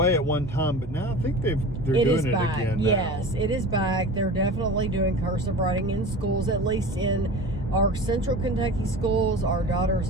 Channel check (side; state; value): both; normal; correlation 0.35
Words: at one time, but now I think they're doing it back. again now. Yes, it is back. They're definitely doing cursive writing in schools, at least in our Central Kentucky schools. Our daughter's